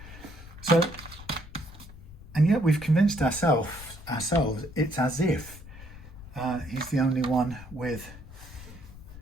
So, and yet we've convinced ourselves it's as if he's the only one with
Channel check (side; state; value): left; noise; rumble, 16 dB below the sound